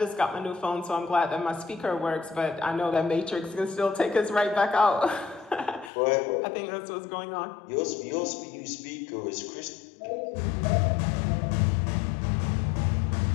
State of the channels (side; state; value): right; drops out; at 5.9 s